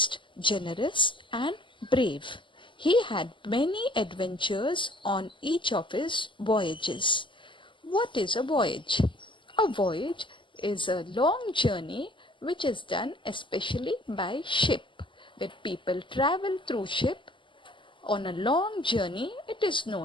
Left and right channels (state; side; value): late; right; 0.24 ms